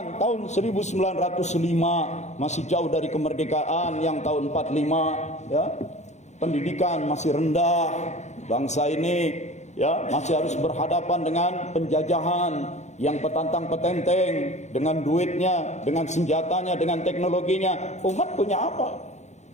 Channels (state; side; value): late; right; 0.33 ms